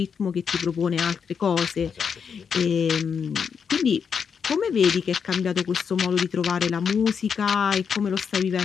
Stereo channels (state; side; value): quieter; right; 6.6 dB